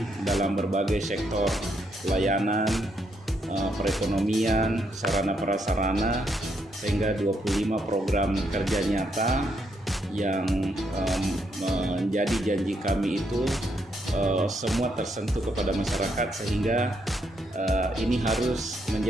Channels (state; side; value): normal; both; correlation 0.76